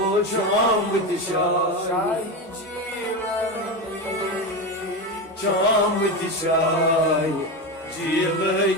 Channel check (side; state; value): both; normal; correlation 0.18